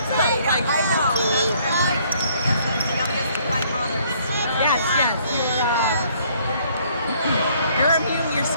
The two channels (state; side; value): inverted; both; correlation -0.63